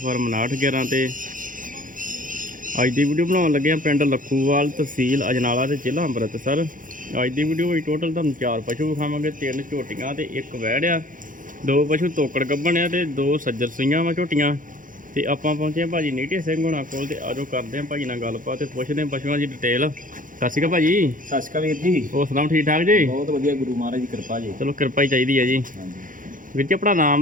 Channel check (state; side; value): late; left; 0.39 ms